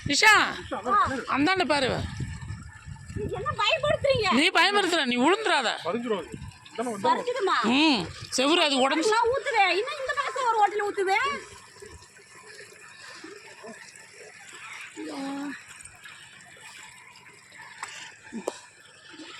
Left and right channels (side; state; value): both; identical; correlation 1.00